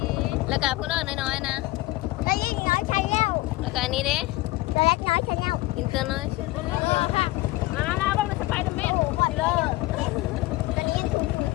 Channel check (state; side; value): quieter; right; 19.0 dB